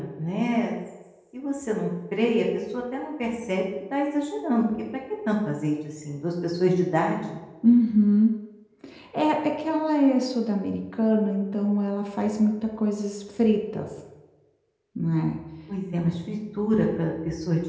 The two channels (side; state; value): both; identical; correlation 1.00